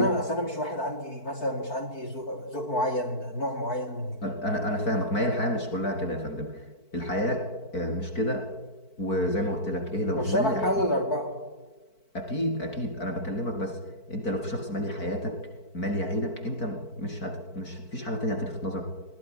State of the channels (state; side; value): late; right; 4.5 ms